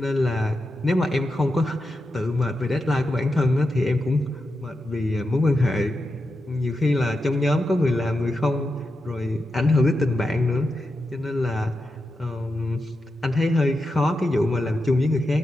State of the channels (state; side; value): normal; both; correlation 0.88